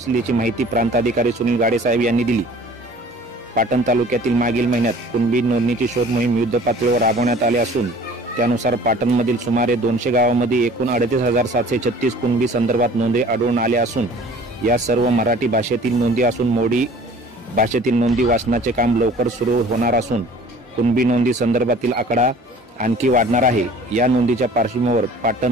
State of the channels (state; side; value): normal; both; correlation 0.48